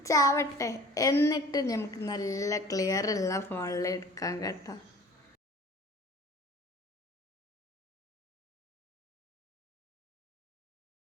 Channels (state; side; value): normal; both; correlation 0.45